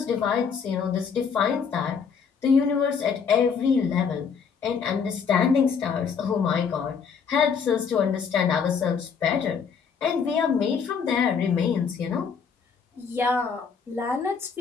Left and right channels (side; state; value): right; quieter; 6.3 dB